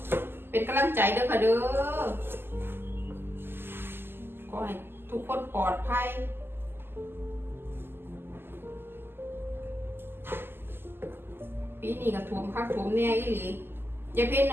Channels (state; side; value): late; left; 0.11 ms